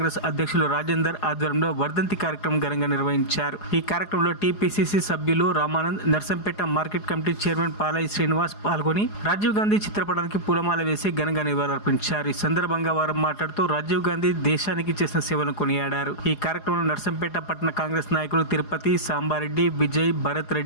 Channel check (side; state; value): right; late; 4.8 ms